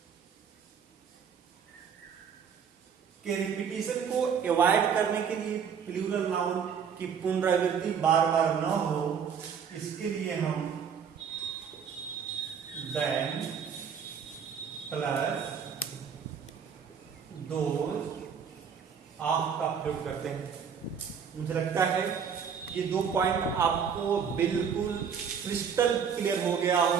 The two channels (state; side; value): quieter; left; 7.0 dB